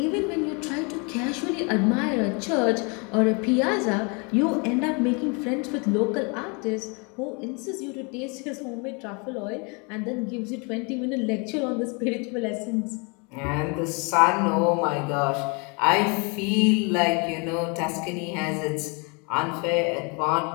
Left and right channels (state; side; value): quieter; right; 32.4 dB